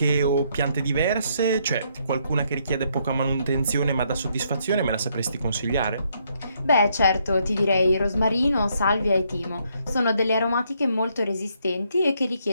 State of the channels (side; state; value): both; inverted; correlation -0.73